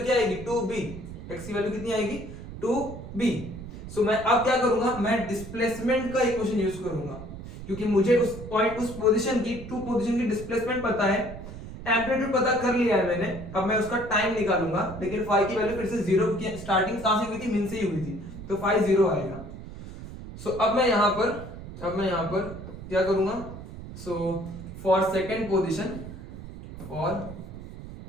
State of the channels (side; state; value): right; noise; rumble, 12 dB below the sound